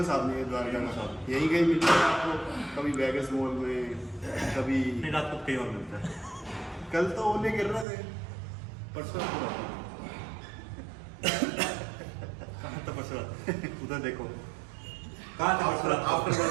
आदमी है द्वारका में। यही कहीं मिलता है आपको, कभी वेगस मॉल में, कभी नहीं रात को कहीं और मिलता है। कल तो ओले गिर रहे थे, परसों कहाँ था परसों रात? उधर देखो कहाँ था परसों रात? आफ्टर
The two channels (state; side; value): drops out; left; at 7.9 s